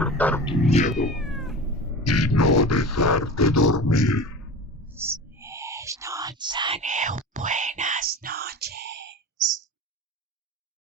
tu miedo y no dejarte dormir. No, buena.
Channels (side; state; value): both; normal; correlation 0.33